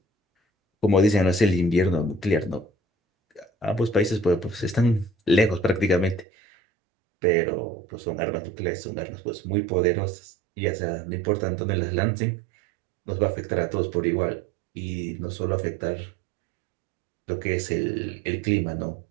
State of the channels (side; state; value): left; drops out; at 6.2 s